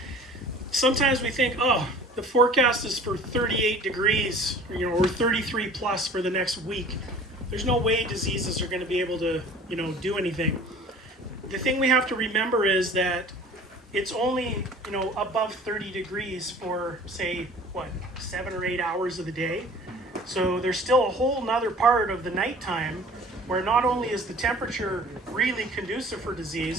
sometimes we think, oh, the forecast is for 38 degrees, or 33 plus for the next week. There's no way diseases are going to be able to, do anything. The thing we have to remember is that it's only, above 30 degrees for, say, 7 or 8 hours of the day. So there's still a whole nother part of the nighttime where not only is the temperature really conducive for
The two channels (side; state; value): both; normal; correlation 0.46